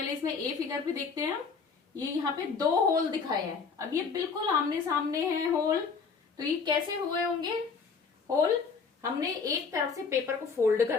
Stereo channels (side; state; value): right; quieter; 5.2 dB